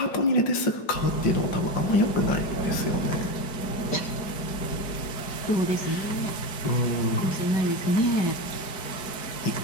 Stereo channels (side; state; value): right; late; 4.7 ms